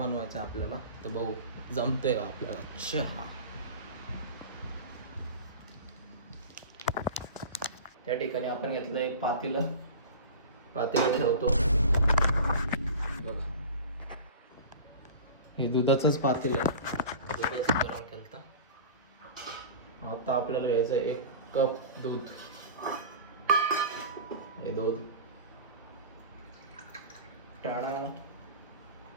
आपल्याला. तर भाऊ जमतंय का आपल्याला चहा? त्या ठिकाणी आपण घेतलं एक पातेलं ठेवतो बघा. हे दुधाचंच पातेलं आहे, दुधाच गरम केलं. आता आपल्याला घ्यायचं 1 कप दूध. हे दूध टाळा.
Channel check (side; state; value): both; inverted; correlation -0.34